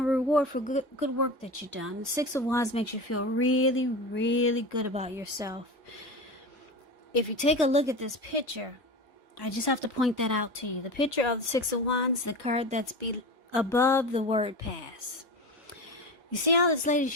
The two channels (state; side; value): normal; both; correlation 0.27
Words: reward for good work that you've done. The Six of Wands makes you feel really, really good about yourself. If you take a look at this picture, I just have to point that out to you. The picture of the Six of Wands, the card that's above the word pass. You see how this lady,